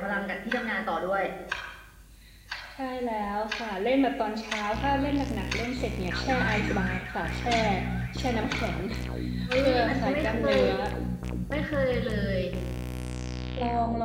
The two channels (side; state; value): both; identical; correlation 1.00